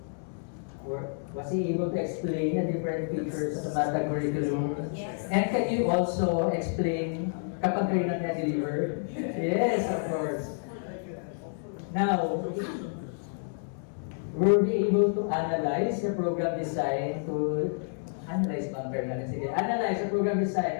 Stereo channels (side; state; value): right; silent; digital silence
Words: explain the different features of the MATATAG curriculum? Yes. And can you also explain kapag kayo na-deliver? Yes, of course. Now, were we able to analyze the program design analyze the program